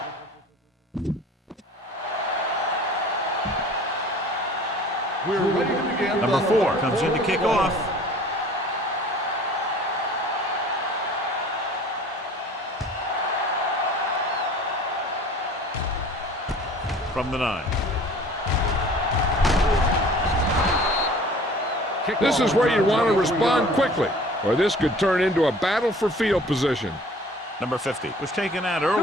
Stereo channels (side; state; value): both; normal; correlation 0.47